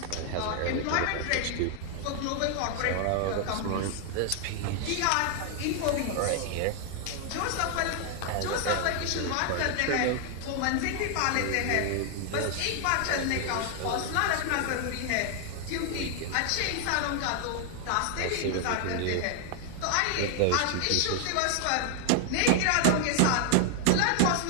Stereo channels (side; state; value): both; different; correlation 0.00